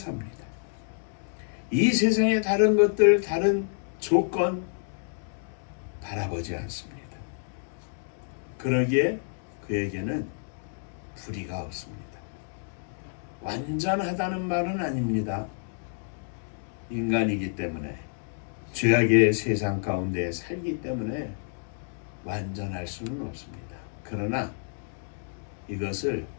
이 세상의 다른 것들, 다른 조건 바라보지 않습니다. 그러기에 그에게는 불의가 없습니다. 완전하다는 말은 아닙니다. 인간이기 때문에, 죄악의 세상 가운데 살기 때문에 완전할 수는 없습니다. 그러나 이것을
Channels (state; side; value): silent; right; digital silence